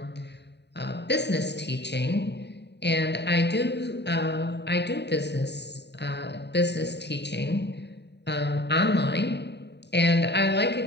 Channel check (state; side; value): late; right; 0.50 ms